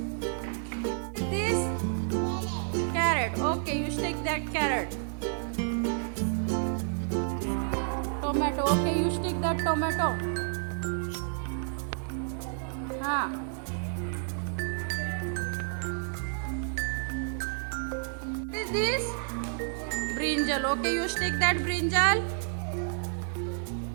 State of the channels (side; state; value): left; silent; digital silence